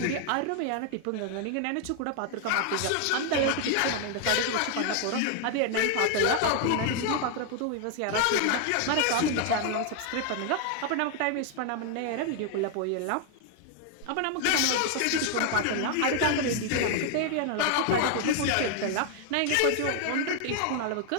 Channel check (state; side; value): different; both; correlation 0.00